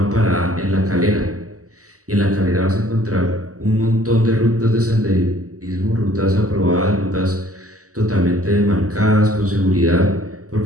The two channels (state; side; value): late; left; 0.66 ms